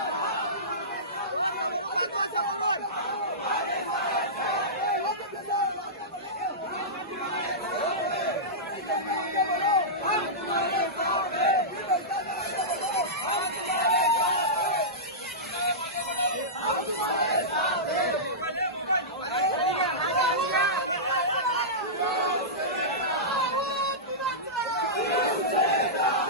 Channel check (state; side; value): normal; both; correlation -0.16